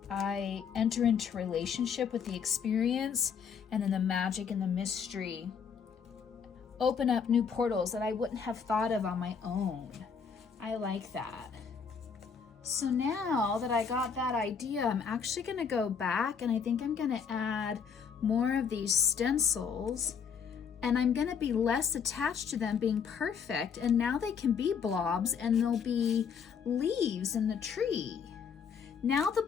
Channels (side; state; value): right; quieter; 6.6 dB